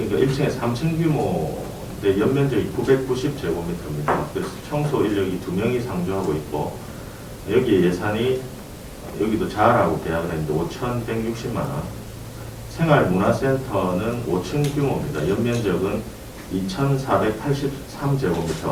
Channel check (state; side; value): identical; both; correlation 1.00